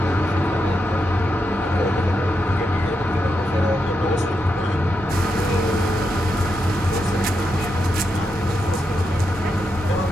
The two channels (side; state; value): both; normal; correlation 0.84